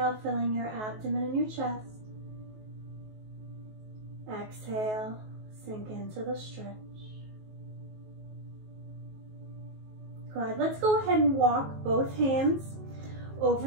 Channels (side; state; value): left; late; 19 ms